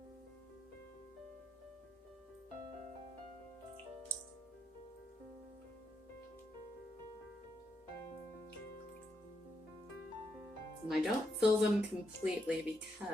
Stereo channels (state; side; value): normal; both; correlation 0.80